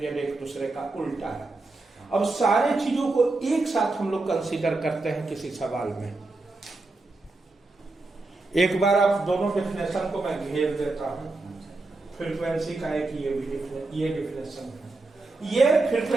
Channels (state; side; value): quieter; left; 3.3 dB